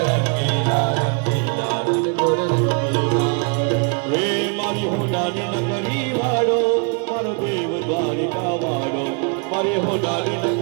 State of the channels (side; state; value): left; quieter; 36.0 dB